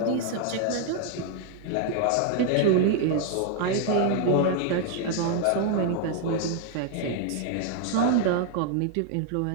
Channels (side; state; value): both; different; correlation 0.00